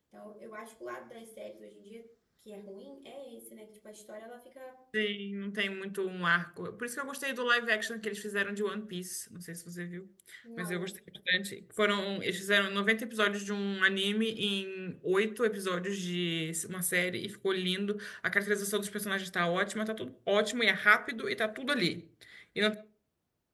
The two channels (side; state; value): both; identical; correlation 1.00